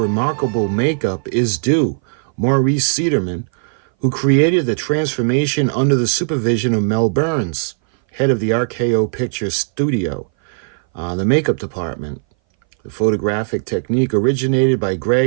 makeup is due Maurice Cederman, who created the transformation under the supervision of Mel Burns, head of the RKO Pictures studio, the makeup department. The photographic technique originated by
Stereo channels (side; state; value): left; silent; 61 dB below the other